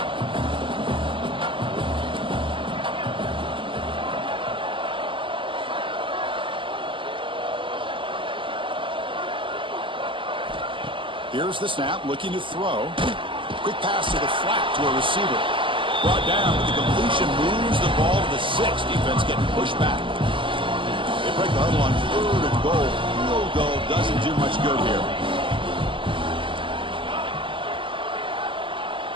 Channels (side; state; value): left; late; 0.25 ms